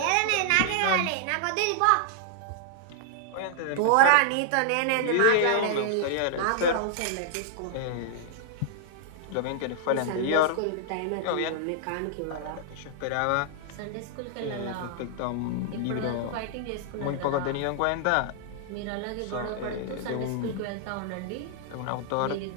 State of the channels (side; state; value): both; different; correlation -0.01